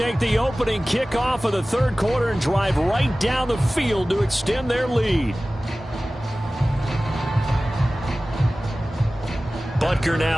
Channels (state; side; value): normal; both; correlation 0.97